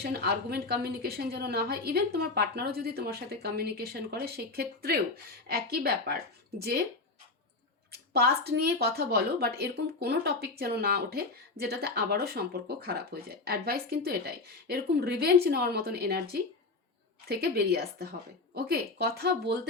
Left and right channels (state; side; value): quieter; right; 3.5 dB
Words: আর্গুমেন্ট কমিউনিকেশন যেন না হয়। ইভেন তোমার পার্টনারও যদি তোমার সাথে কমিউনিকেশন করে সেই ক্ষেত্রেও একই ব্যাপার, যে পাস্ট নিয়ে কথা বলো, বাট এরকম কোনো টপিক যেন না ওঠে যেটাতে আবারও সম্পর্ক খারাপ হয়ে যায়। অ্যাডভাইস কিন্তু এটাই, এরকম রিভেঞ্জ নেওয়ার মতন এনার্জি থেকে বেরিয়ে আসতে হবে। ওকে, কথা বলতে